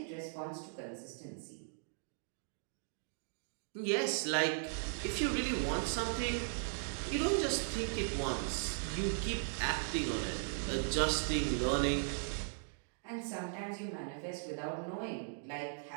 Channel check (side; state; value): left; silent; digital silence